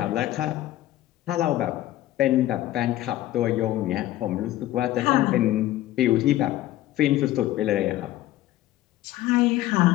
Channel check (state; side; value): quieter; right; 14.9 dB